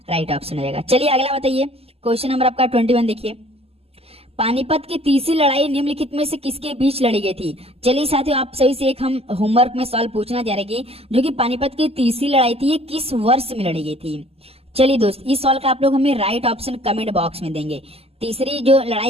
राइट ऑप्शन हो जाएगा। चलिए अगला बताइए क्वेश्चन नंबर आपका 21 देखिए। पानीपत की तीसरी लड़ाई निम्नलिखित में से किसके बीच लड़ी गई थी? चलिए साथियों आप सभी से एक हम होमवर्क में सवाल पूछना चाह रहे हैं जो कि पानीपत की तीसरी लड़ाई थी ये किस वर्ष में लड़ी गई थी? चलिए दोस्त इस सवाल का आप लोग हमें राइट ऑप्शन कमेंट बॉक्स में देंगे। तीसरी जो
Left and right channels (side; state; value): left; late; 0.29 ms